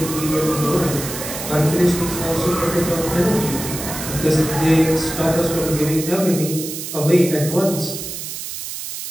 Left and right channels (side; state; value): right; noise; hiss, 7 dB below the sound